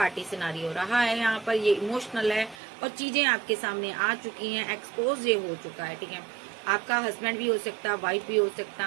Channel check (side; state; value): left; drops out; at 2.6 s